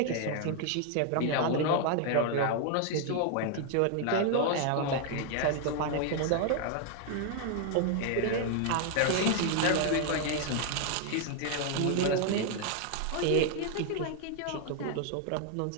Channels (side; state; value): both; different; correlation 0.00